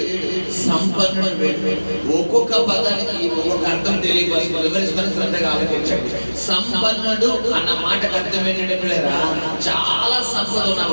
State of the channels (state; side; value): inverted; both; correlation -1.00